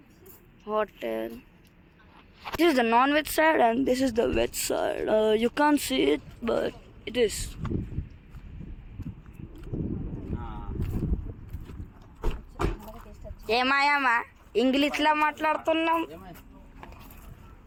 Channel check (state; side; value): identical; both; correlation 1.00